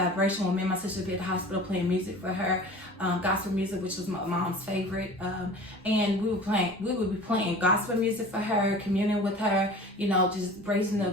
when me and my sister would be at the hospital playing music for her, gospel music, which was my mom's favorite. And we would be playing gospel music for her, communing with her, just raising the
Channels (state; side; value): normal; both; correlation 0.41